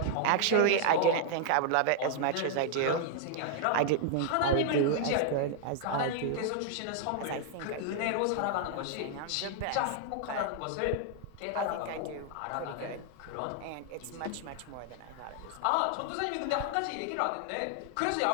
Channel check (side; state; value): both; different; correlation 0.00